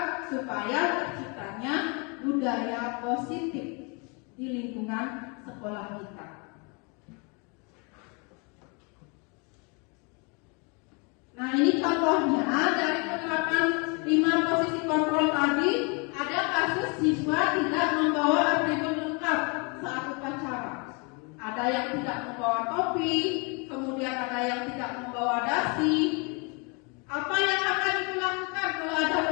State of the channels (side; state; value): right; quieter; 32.6 dB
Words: supaya terciptanya budaya positif di lingkungan sekolah kita. Nah, ini contohnya dari penerapan 5 posisi kontrol tadi, ada kasus siswa tidak membawa atribut lengkap saat upacara. Ada yang tidak membawa topi, kemudian ada yang tidak membawa dasi. Apa yang akan dilakukan kalau ada